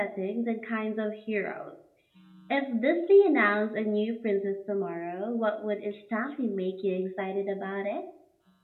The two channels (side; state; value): both; identical; correlation 1.00